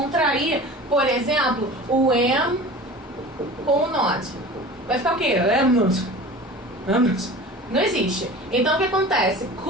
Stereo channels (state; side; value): normal; both; correlation 0.38